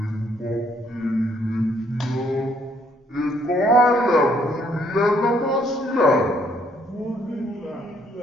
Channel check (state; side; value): normal; both; correlation 0.67